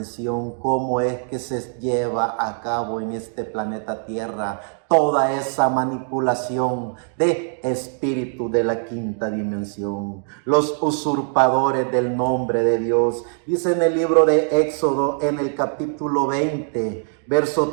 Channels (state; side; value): silent; left; 55 dB below the other